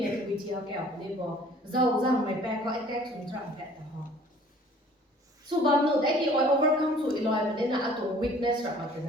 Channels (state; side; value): normal; both; correlation 0.52